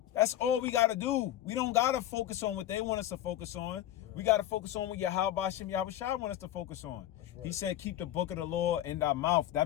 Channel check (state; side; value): quieter; right; 12.9 dB